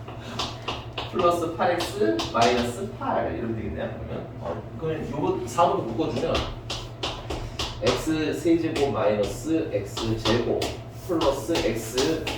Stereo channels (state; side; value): identical; both; correlation 1.00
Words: 플러스 8x 마이너스 8 이러면 되겠네요. 그러면 요거 4로 묶어주면 x 세제곱 마이너스 x 제곱 플러스 x